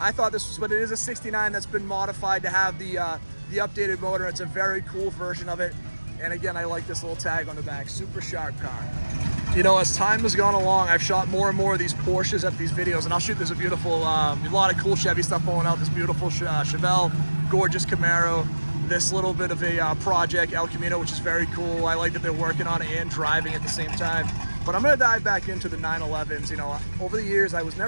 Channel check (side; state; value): both; inverted; correlation -1.00